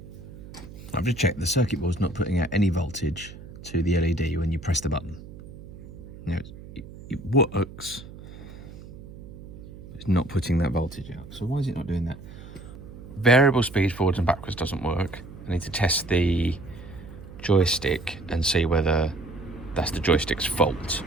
I've just checked the circuit board's not putting out any voltage to the LED when you press the button. Now it works. It's not putting that voltage out. So why is it not doing that? Variable speed forwards and backwards doesn't work. I need to test the joystick and see whether that's the joystick's fault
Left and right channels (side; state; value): right; noise; hum, 15 dB below the sound